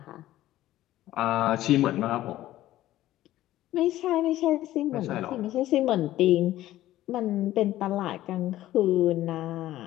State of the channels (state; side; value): quieter; right; 14.5 dB